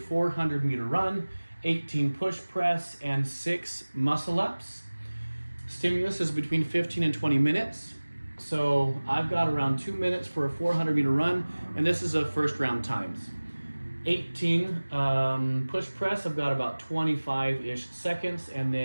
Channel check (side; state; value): both; inverted; correlation -1.00